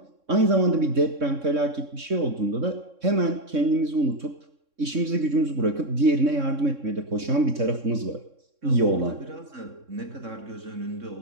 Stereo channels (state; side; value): late; left; 3.6 ms